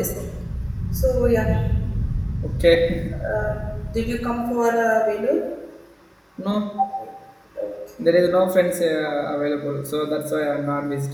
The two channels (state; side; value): identical; both; correlation 1.00